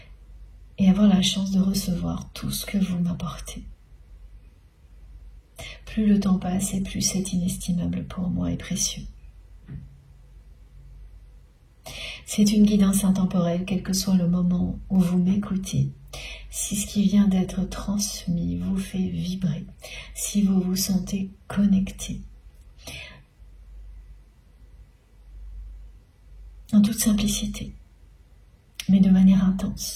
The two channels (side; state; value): both; identical; correlation 1.00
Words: et avoir la chance de recevoir tout ce que vous m'apportez. Plus le temps passe et plus c'est inestimable pour moi et précieux. C'est une guidance intemporelle, quel que soit le moment où vous m'écoutez. Si ce qui vient d'être transmis vous fait vibrer, si vous vous sentez connecté, en toute simplicité, mais de manière